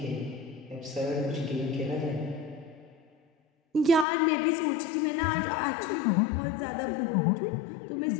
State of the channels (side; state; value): right; drops out; at 4.0 s